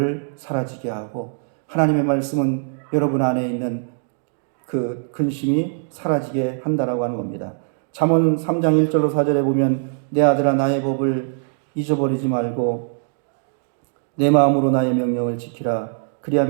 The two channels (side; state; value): left; silent; digital silence